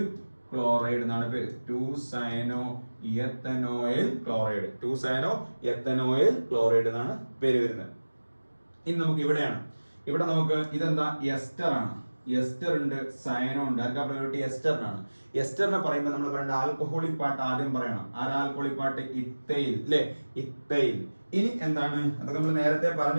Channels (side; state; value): both; inverted; correlation -1.00